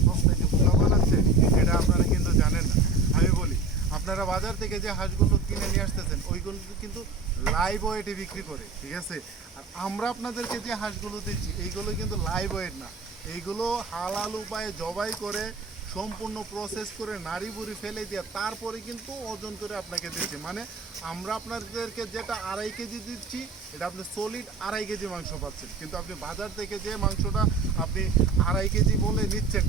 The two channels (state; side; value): quieter; left; 3.7 dB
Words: সস্তায় যে বোকা বানাচ্ছে এটা আপনারা কিন্তু জানেন না। আমি বলি, আপনারা বাজার থেকে যে হাঁসগুলো কিনে নিয়ে আসতেছেন ওইগুলো কিন্তু লাইভ ওয়েটে বিক্রি করে, ঠিক আছে? আর আমরা আপনাদেরকে যে হাঁসগুলো দিচ্ছি এইগুলো কিন্তু লাইভ ওয়েট না, এইগুলো হালাল উপায়ে জবাই করে সম্পূর্ণ প্রসেস করে নাড়ি বুড়ি ফেলে দিয়ে তারপরে কিন্তু ওজন করে আপনাকে দিচ্ছি। মানে আমরা আপনাদেরকে যেটা 2.5 কেজি দিচ্ছি এটা আপনি সলিড 2.5 কেজি মাংস পাচ্ছেন, কিন্তু আপনি বাজার থেকে যে মাংসটা আপনি 2.5 কেজি বলে নিচ্ছেন,